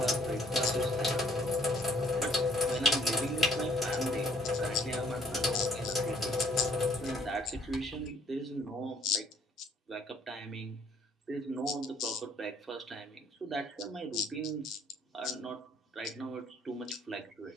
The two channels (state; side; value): normal; both; correlation 0.61